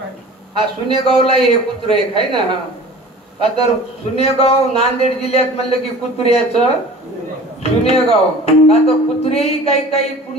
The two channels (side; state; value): both; normal; correlation 0.42